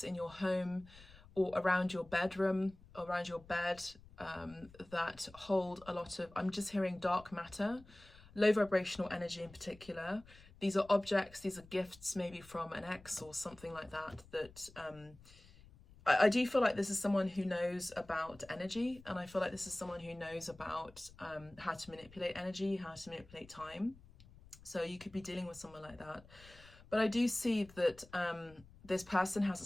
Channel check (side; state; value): left; noise; rumble, 22 dB below the sound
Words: in your home or around your bedroom, around your bed, that hold a lot of, I'm just hearing dark matter, low vibrational energy in particular. These are objects, these are gifts maybe from an ex or something like that, that I do feel like this is someone who knows about energy, and I feel like this is someone who knows about how to manipulate energy, how to manipulate time. So you could be dealing with someone like that. But I do see that this person has a